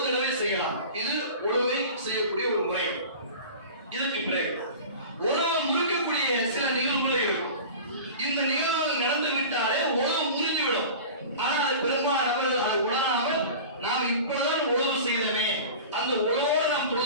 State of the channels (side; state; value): both; inverted; correlation -0.36